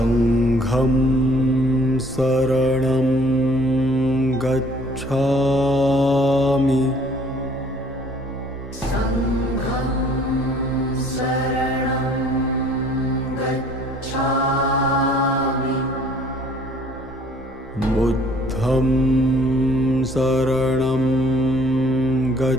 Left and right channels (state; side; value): normal; both; correlation 0.57